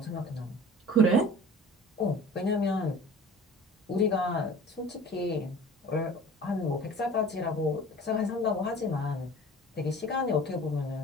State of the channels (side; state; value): both; normal; correlation 0.43